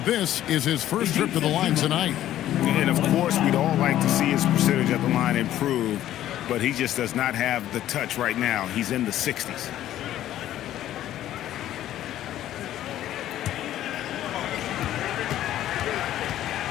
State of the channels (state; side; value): quieter; right; 12.7 dB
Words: this is his first trip to the line tonight. And, of course, we'd all like to see his percentage at the line improve, but he just does not have the touch right now. He's in the 60s.